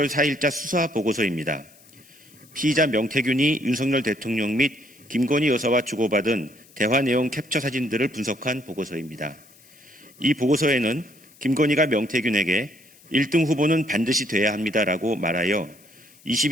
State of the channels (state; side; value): noise; left; hiss, 26 dB below the sound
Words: 4일자 수사 보고서입니다. 피의자 명태균이 윤석열 대통령 및 김건희 여사와 주고받은 대화 내용 캡처 사진들을 분석한 보고서입니다. 이 보고서에는 김건희가 명태균에게 1등 후보는 반드시 돼야 합니다라고 말하여